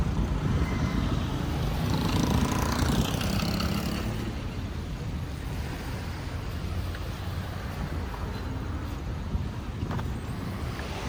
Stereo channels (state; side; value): identical; both; correlation 1.00